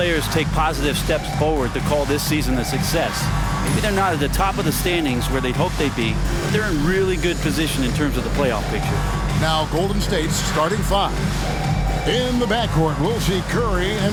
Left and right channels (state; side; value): identical; both; correlation 1.00